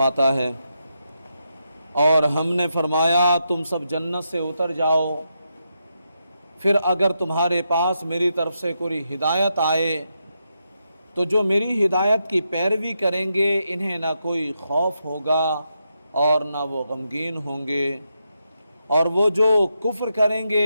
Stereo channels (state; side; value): inverted; both; correlation -0.84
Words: ہے، اور ہم نے فرمایا تم سب جنت سے اتر جاؤ، پھر اگر تمہارے پاس میری طرف سے کوئی ہدایت آئے تو جو میری ہدایت کی پیروی کریں گے انہیں نہ کوئی خوف ہوگا اور نہ وہ غمگین ہوں گے، اور وہ جو کفر کریں